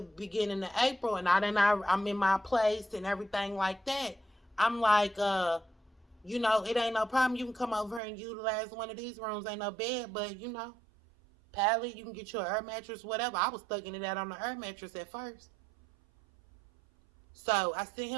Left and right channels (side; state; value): left; drops out; at 8.0 s